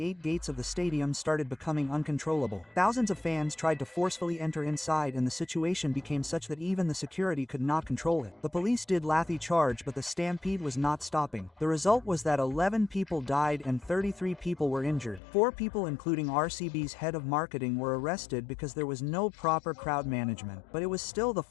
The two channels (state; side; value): drops out; right; at 15.2 s